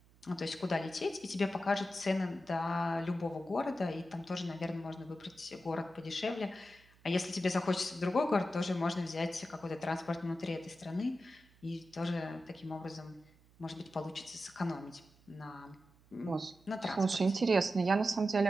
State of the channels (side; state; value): right; noise; hum, 29 dB below the sound